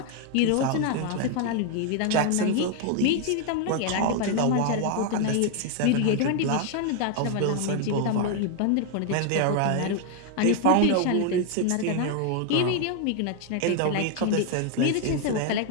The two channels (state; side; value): different; both; correlation 0.01